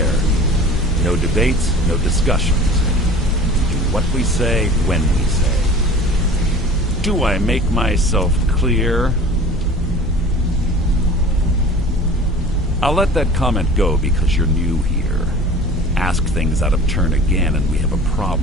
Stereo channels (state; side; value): normal; both; correlation 0.42